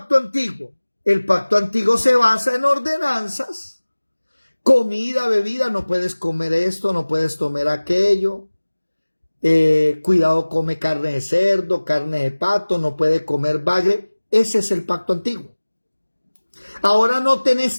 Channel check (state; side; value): inverted; both; correlation -1.00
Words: antiguo? El pacto antiguo se basa en ordenanzas. Comida, bebida, no puedes comer esto, no puedes tomar aquello. Cuidado, come carne de cerdo, carne de pato, no puede comer bagre. Ese es el pacto antiguo. Ahora noten